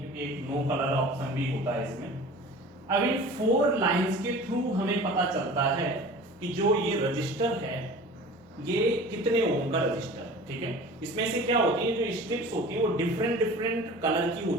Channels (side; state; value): both; normal; correlation 0.40